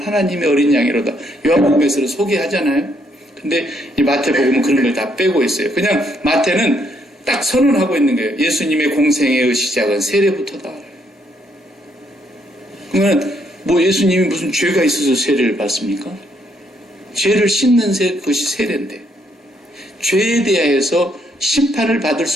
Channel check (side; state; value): both; normal; correlation 0.72